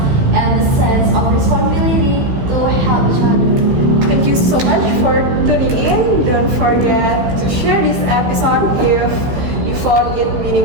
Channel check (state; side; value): late; left; 15 ms